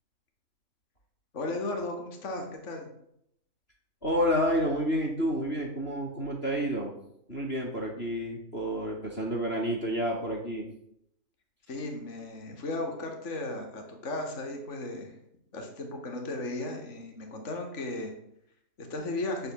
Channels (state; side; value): late; right; 3.0 ms